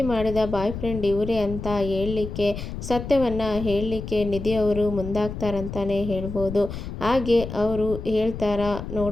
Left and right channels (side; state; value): left; noise; rumble, 8 dB below the sound